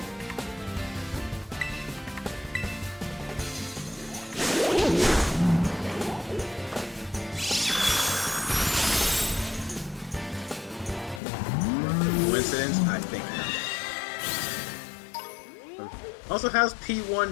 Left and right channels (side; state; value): right; drops out; at 11.2 s